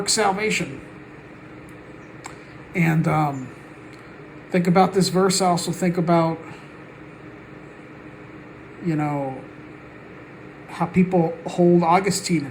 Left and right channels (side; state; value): both; identical; correlation 1.00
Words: salvation. And think about this verse. I also think about, how people hold Augustine